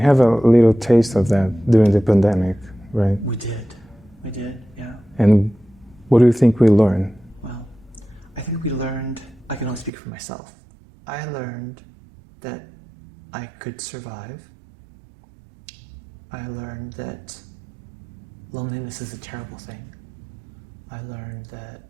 a little taste of that during the pandemic, right? We did, yeah. And what do you think we learned? Well, I think we learned, I can only speak for myself, I learned that I could survive. I learned that loneliness is a terrible thing. I learned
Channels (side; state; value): left; drops out; at 9.9 s